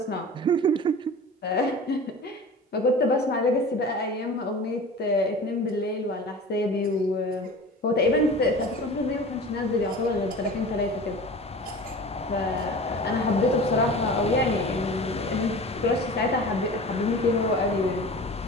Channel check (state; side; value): normal; both; correlation 0.37